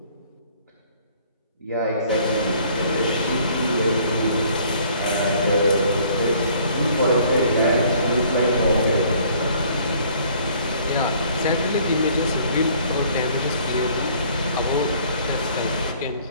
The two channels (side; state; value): both; inverted; correlation -0.58